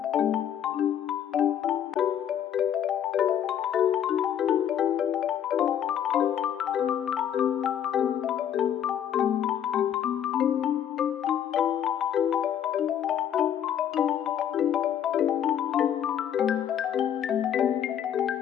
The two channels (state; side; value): quieter; right; 9.5 dB